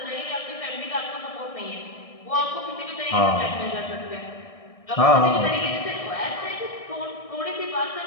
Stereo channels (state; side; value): late; right; 1.6 ms